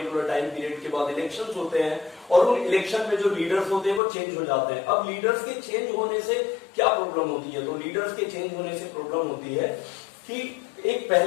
टाइम पीरियड के बाद इलेक्शंस होते हैं, और उन इलेक्शन में जो लीडर्स होते हैं वो चेंज हो जाते हैं। अब लीडर्स के चेंज होने से क्या प्रॉब्लम होती है? तो लीडर्स के चेंज होने से प्रॉब्लम होती है कि एक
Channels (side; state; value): right; drops out; at 4.0 s